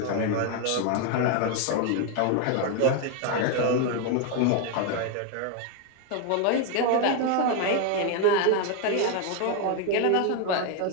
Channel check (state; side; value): different; both; correlation 0.01